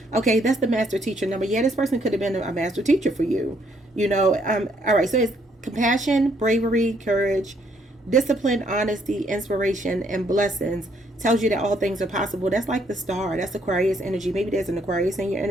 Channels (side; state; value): both; normal; correlation 0.69